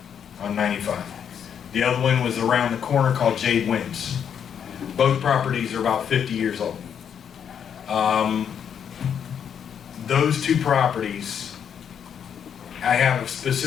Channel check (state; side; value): quieter; right; 8.1 dB